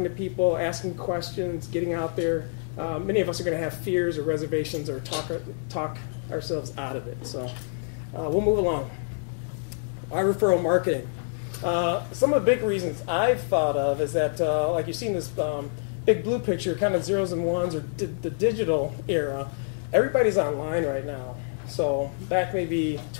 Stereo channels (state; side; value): silent; right; digital silence